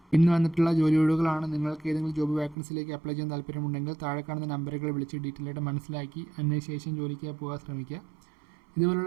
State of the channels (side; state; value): left; drops out; at 2.6 s